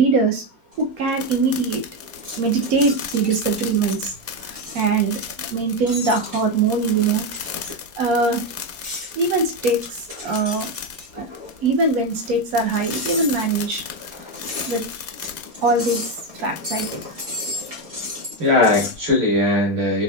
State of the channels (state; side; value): late; left; 4.2 ms